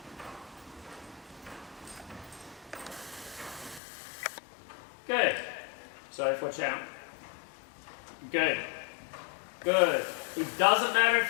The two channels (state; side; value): drops out; right; at 3.8 s